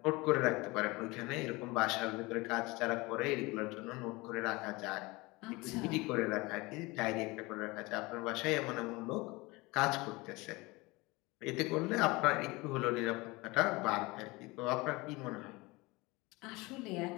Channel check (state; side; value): quieter; right; 23.3 dB